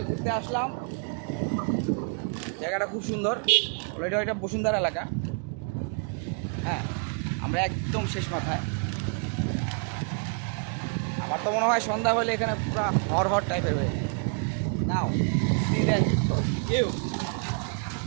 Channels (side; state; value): left; quieter; 36.5 dB